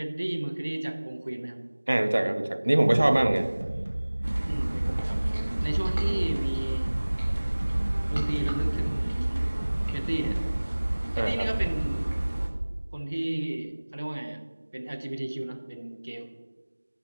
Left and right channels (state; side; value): inverted; both; correlation -1.00